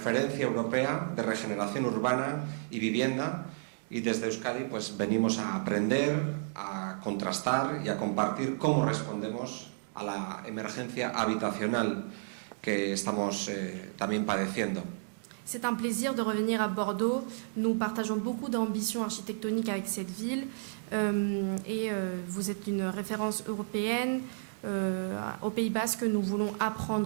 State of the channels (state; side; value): silent; left; digital silence